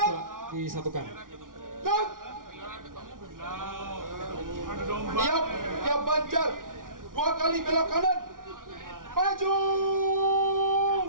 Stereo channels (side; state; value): left; late; 0.89 ms